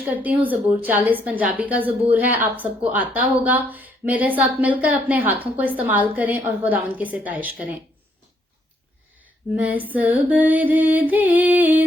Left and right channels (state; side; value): normal; both; correlation 0.71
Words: करती हूँ, ज़बूर 40 पंजाबी का ज़बूर है, आप सबको आता होगा। मेरे साथ मिलकर अपने हाथों को इस्तेमाल करें और खुदावंद की सिताइश करें। मैं सबर दे